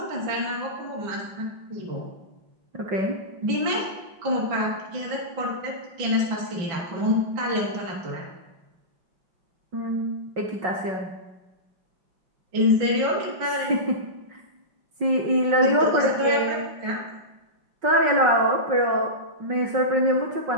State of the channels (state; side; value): late; left; 5.5 ms